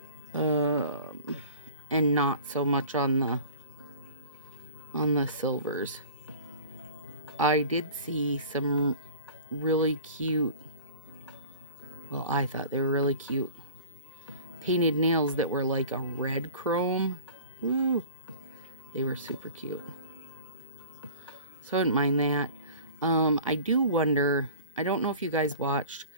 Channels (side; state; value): both; inverted; correlation -0.43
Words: and not so much on the silvers. I did see some really cute, well, I thought they were really cute painted nails that were like a red chrome. Woo! They were super cute. So I didn't mind that. I do wonder, I don't know if you guys watched,